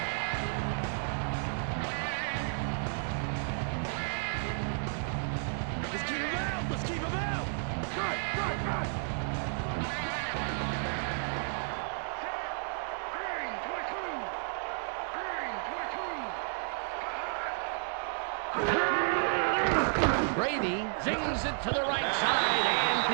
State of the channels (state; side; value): silent; left; 56 dB below the other